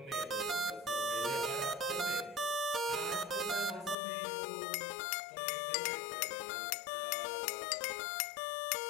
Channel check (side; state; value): right; drops out; at 4.0 s